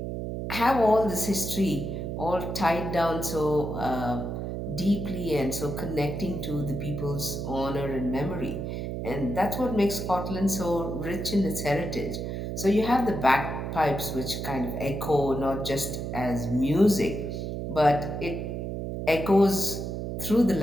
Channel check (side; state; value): right; noise; hum, 4 dB below the sound